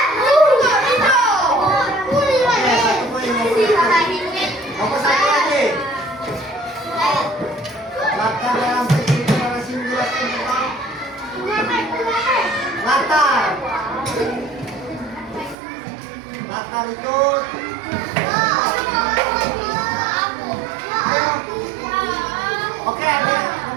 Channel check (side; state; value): left; drops out; at 15.6 s